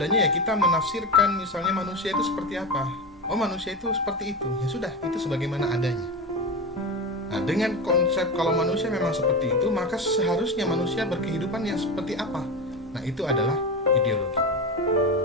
ya kita menafsirkan misalnya manusia itu seperti apa. Oh manusia itu seperti itu, ya sudah itu sebagaimana adanya. Nah dengan konsep kalau manusia memang seperti itu, maka seharusnya manusia berkehidupan yang seperti apa. Nah itu adalah ideologi.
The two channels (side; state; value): both; normal; correlation 0.21